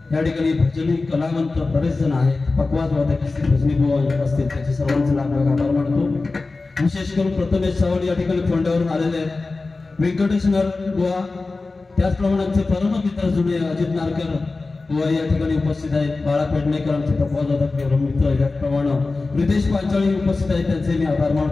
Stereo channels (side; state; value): right; quieter; 3.6 dB